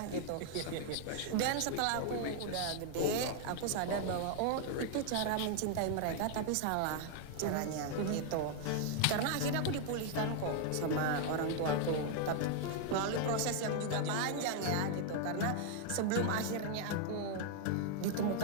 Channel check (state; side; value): different; both; correlation 0.00